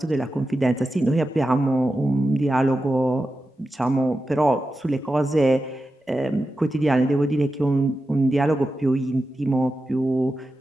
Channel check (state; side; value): normal; both; correlation 0.91